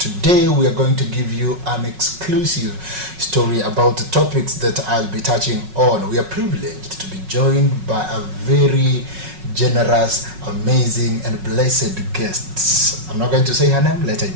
we are going to give you an exclusive story about the topics that I'll be touching on. We are privileged to be joined by a very generous, amazing and blessed guest. I'm not going to say her name, let her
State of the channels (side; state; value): left; late; 5.4 ms